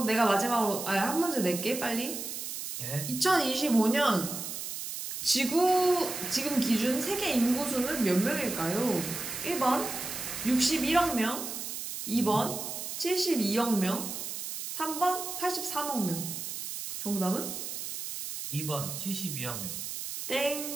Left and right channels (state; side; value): noise; right; hiss, 6 dB below the sound